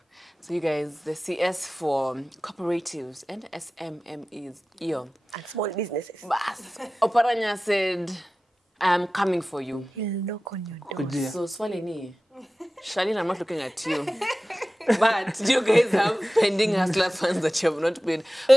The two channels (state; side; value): normal; both; correlation 0.96